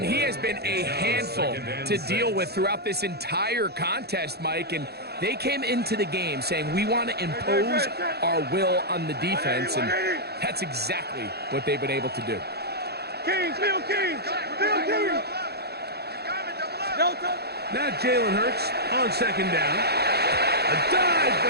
he has been a handful to deal with throughout this entire contest, Mike. And they came into the game saying, we want to impose our will on the defense. And that's exactly what they've been able to do. Kings, Bill Kings, Bill Kings. Delta. Now Jalen Hurts on second down. A dive,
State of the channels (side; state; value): left; late; 0.47 ms